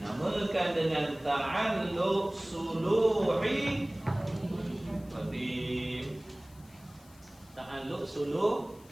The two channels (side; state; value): left; noise; hiss, 26 dB below the sound